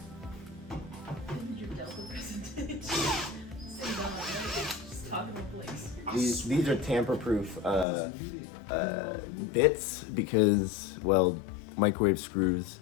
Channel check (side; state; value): right; drops out; at 7.9 s